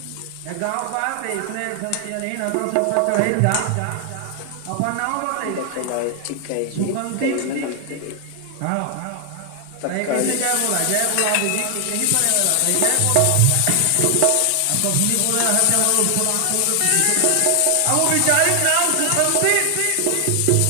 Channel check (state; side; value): different; both; correlation 0.00